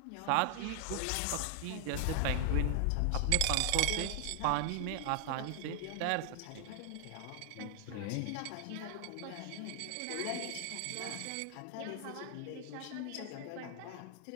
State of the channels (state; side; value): different; both; correlation 0.00